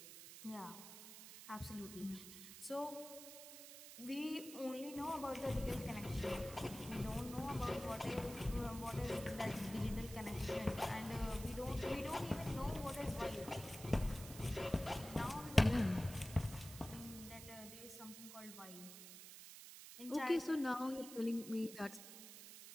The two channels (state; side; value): noise; right; hiss, 13 dB below the sound